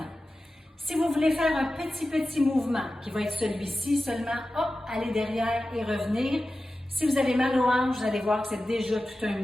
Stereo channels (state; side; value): normal; both; correlation 0.94